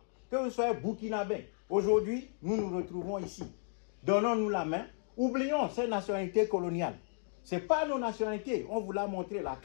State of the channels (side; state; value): right; silent; digital silence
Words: que vous soyez Burkinabé. Aujourd'hui, nous nous retrouvons ici. Donnons-nous la main. Oublions ces nationalités coloniales. Ce n'est pas nos nationalités. On vous l'a montré, la